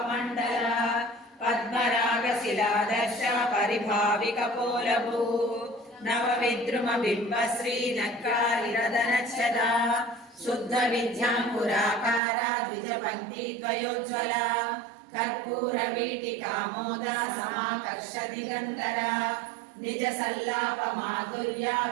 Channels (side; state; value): left; drops out; at 12.2 s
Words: पद्मरागशिलादर्श परिभाविकपोलभू नवविद्रुमबिम्बश्रीनक्कारिरदनच्छदा शुद्धविद्याङ्कुराकारा द्विजपङ्क्तिद्वयोज्ज्वला कर्पूरवीटिकामोदा समाकर्षदिगन्धरा निजसल्लापमाधुर्या